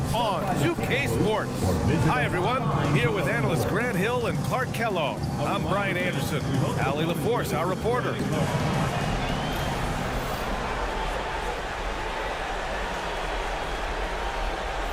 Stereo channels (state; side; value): identical; both; correlation 1.00